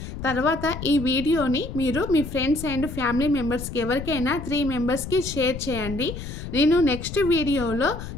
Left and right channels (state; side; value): noise; left; rumble, 9 dB below the sound